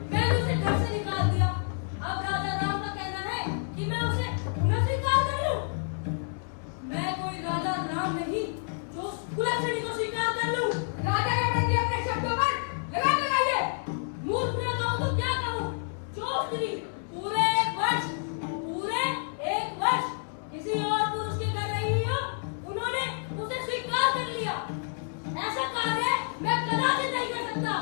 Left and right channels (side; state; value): right; silent; 59 dB below the other